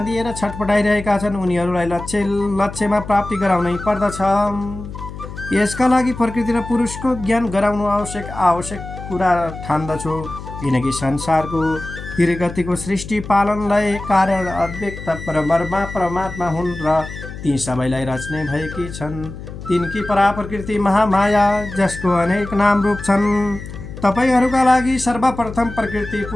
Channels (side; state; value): left; noise; hum, 11 dB below the sound